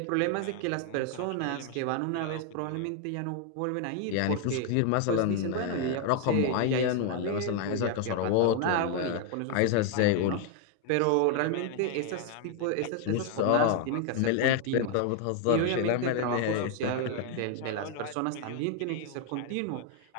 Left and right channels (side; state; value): both; different; correlation 0.00